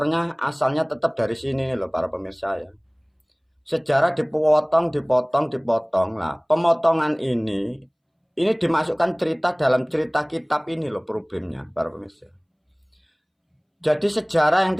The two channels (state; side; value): identical; both; correlation 1.00